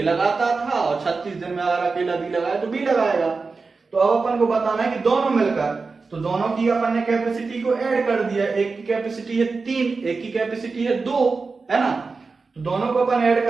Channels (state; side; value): quieter; left; 4.3 dB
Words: लगाता था और 36 दिन में अगर अकेला बी लगाए तो बी लगाएगा। तो अब अपन को बताना है कि दोनों मिलकर, तो दोनों की अपन ने कैपेसिटी को ऐड कर दिया। एक की कैपेसिटी है 3, एक की कैपेसिटी है 2, है ना। तो दोनों को अपन ऐड